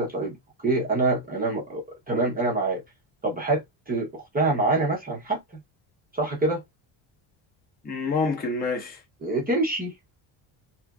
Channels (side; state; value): both; normal; correlation 0.07